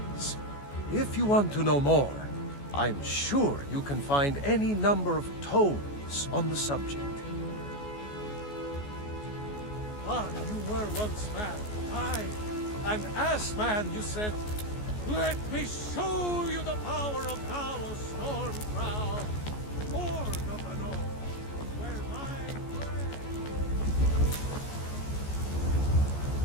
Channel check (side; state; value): right; late; 14 ms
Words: If you want to know more, I'm sure you can find any number of tomes on the subject. But you were once man, aye, and as man you said, "Let me show you the power of Talos Stormcrown, Lord of the North, where my